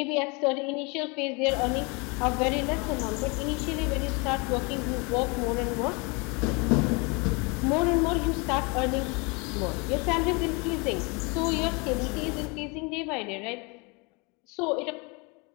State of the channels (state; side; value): quieter; right; 29.7 dB